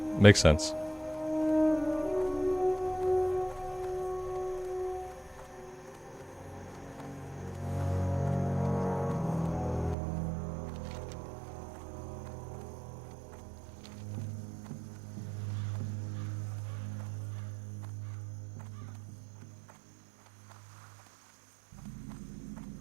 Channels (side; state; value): left; drops out; at 10.0 s